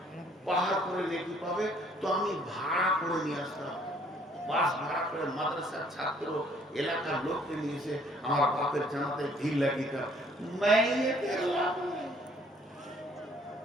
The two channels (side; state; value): both; normal; correlation 0.61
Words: পাহাড় করে নেকি পাবে, তো আমি ভাড়া করে নিয়ে আসতাম, বাস ভাড়া করে, মাদ্রাসার ছাত্র, এলাকার লোককে নিয়ে এসে আমার বাপের জানাতে ভিড় লাগিতাম। মাইয়ের লাভ নেই।